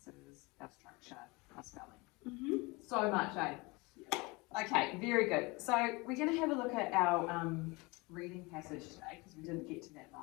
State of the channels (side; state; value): right; quieter; 25.4 dB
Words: our structure, our spelling. So much, eh? Okay, very good. So we're going to have a look at our reading passage today because we didn't get to that